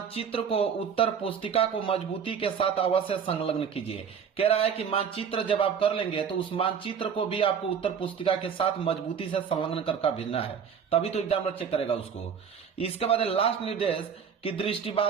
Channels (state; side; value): quieter; left; 7.1 dB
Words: को उत्तर पुस्तिका को मजबूती के साथ अवश्य संलग्न कीजिए। कह रहा है कि मानचित्र जब आप कर लेंगे तो उस मानचित्र को भी आपको उत्तर पुस्तिका के साथ मजबूती से संलग्न करके भेजना है, तभी तो एग्जामिनर चेक करेगा उसको। इसके बाद लास्ट निर्देश कि